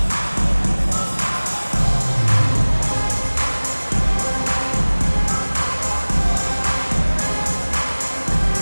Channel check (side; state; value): both; inverted; correlation -1.00